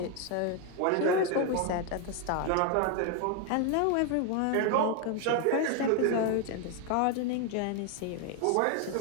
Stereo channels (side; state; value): both; different; correlation 0.01